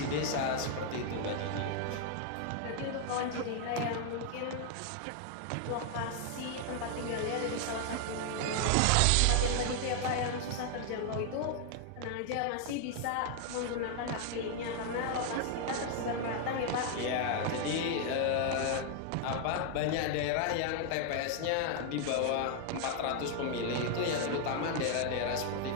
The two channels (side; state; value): both; different; correlation 0.00